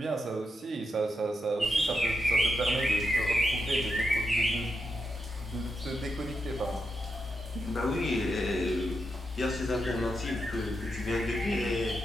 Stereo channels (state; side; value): normal; both; correlation 0.84